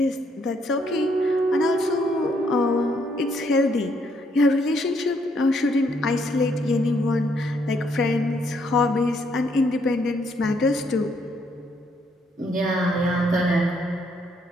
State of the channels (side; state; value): both; normal; correlation 0.71